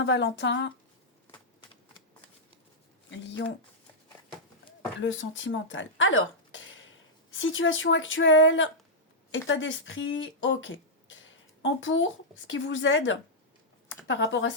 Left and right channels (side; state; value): both; normal; correlation -0.09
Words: lion, le sentimental. Alors, situation actuelle, état d'esprit, ok. En pour, ce qui vous aide par rapport à